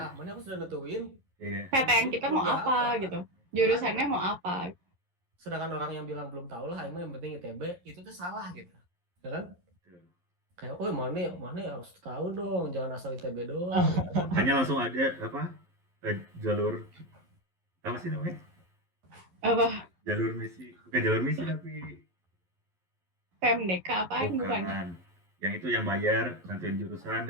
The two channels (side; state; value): left; late; 11 ms